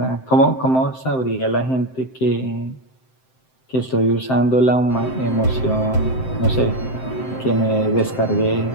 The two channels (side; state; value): right; late; 7.7 ms